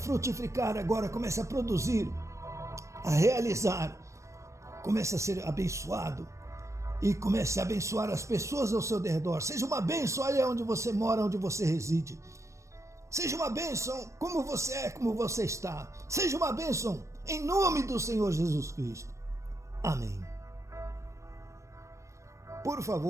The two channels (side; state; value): left; late; 0.15 ms